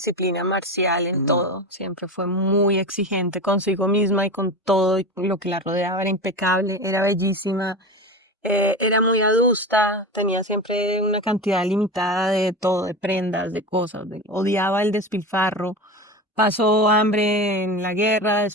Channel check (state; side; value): normal; both; correlation 0.26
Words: marcial en todo. Siempre fue muy exigente consigo misma y con todo y lo que la rodeaba. Era impecable, era bellísima, era muy adusta, tenía siempre una cantidad limitada de todo, de prendas, de cosas. Odiaba el despilfarro. Pasó hambre en la guerra,